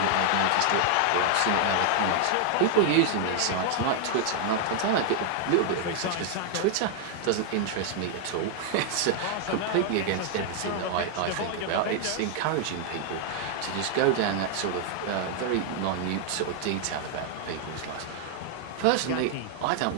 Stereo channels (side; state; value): both; different; correlation 0.00